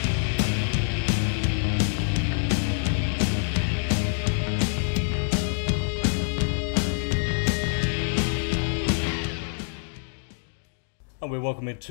And we're welcome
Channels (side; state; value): right; silent; digital silence